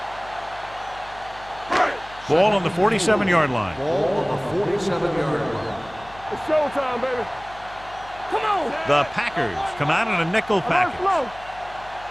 Ball on the 47-yard line. Ball on the 47-yard line. It's showtime, baby. Come on. The Packers come out in a nickel package.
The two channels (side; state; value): left; noise; hum, 21 dB below the sound